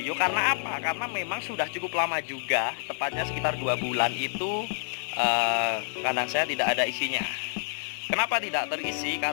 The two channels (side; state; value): right; silent; digital silence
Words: Karena apa? Karena memang sudah cukup lama juga, tepatnya sekitar 2 bulan itu kandang saya tidak ada isinya. Kenapa tidak terisi?